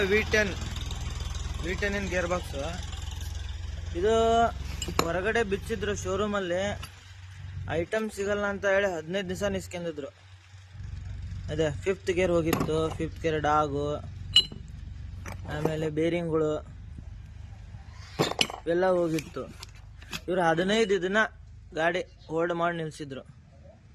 V10 gear box ಇದು. ಹೊರಗಡೆ ಬಿಚ್ಚಿದ್ರು ಶೋರೂಮಲ್ಲಿ, ಐಟಮ್ ಸಿಗಲ್ಲ ಅಂತ ಹೇಳಿ 15 ದಿವಸ ನಿಸ್ಕೊಂಡಿದ್ರು. ಅದೇ 5th ಗೇರ್ ಹೋಗಿತ್ತು, 5th ಗೇರ್ ಡಾಗು, ಆಮೇಲೆ ಬೇರಿಂಗ್ಗಳು ಇವೆಲ್ಲ ಹೋಗಿತ್ತು. ಇವರು 15 ದಿನ ಗಾಡಿ ಹೋಲ್ಡ್ ಮಾಡಿ ನಿಲ್ಸಿದ್ರು.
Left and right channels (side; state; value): both; identical; correlation 1.00